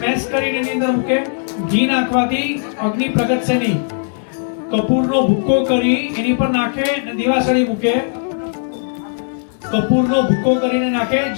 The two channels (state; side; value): silent; right; digital silence